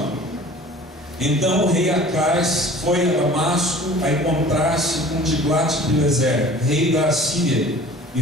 Então o rei Acais foi a Damasco a encontrar-se com Tiglat-Pileser, rei da Assíria,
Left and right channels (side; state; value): both; normal; correlation 0.45